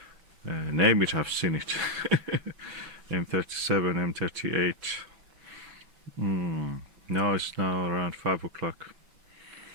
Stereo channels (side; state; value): left; late; 6.0 ms